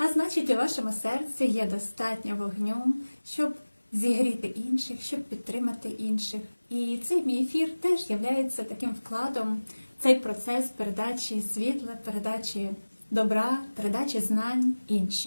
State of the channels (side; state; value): both; inverted; correlation -1.00